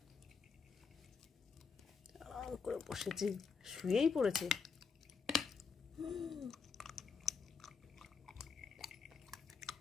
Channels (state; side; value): quieter; right; 5.4 dB